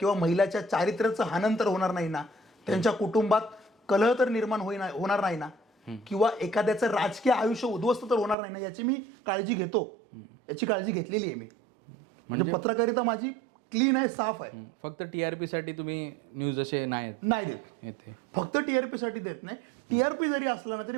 महिलाच्या चारित्र्याचं हनन तर होणार नाही ना, त्यांच्या कुटुंबात कलह तर निर्माण होणार नाही ना. किंवा एखाद्याचं राजकीय आयुष्य उद्ध्वस्त तर होणार नाही ना, याची मी काळजी घेतो. याची काळजी घेतलेली आहे मी. म्हणजे पत्रकारिता माझी क्लीन आहे, साफ आहे. फक्त TRP साठी तुम्ही न्यूज असे नाही देत येते. फक्त TRP साठी देत नाही. TRP जरी असला ना तरी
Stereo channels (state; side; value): drops out; left; at 8.3 s